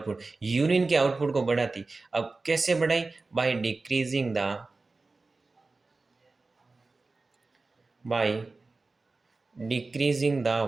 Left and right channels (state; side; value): quieter; left; 3.6 dB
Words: यूरिन के आउटपुट को बढ़ाती। अब कैसे बढ़ाई, by decreasing the